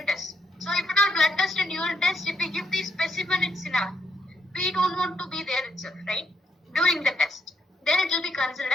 test. So if it are blood test and urine test, if we give the specimen, it's enough. We don't want to be there itself, right? During the test. Then it will be considered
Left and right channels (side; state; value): both; normal; correlation 0.77